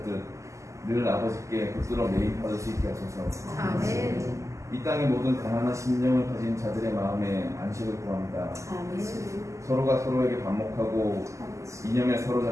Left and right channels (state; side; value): late; left; 0.15 ms